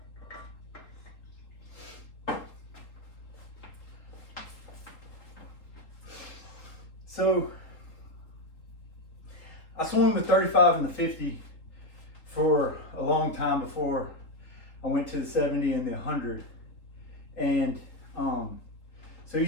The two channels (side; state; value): right; late; 3.8 ms